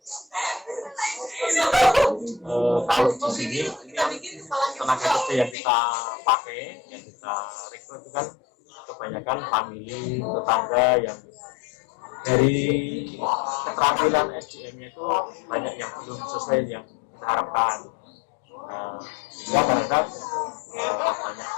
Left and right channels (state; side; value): drops out; right; at 5.6 s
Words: kalau di sini tenaga kerja yang kita pakai, yang kita rekrut itu kan kebanyakan famili, tetangga yang dari keterampilan SDM-nya itu banyak yang belum sesuai yang kita harapkan. Sehingga kadang-kadang banyak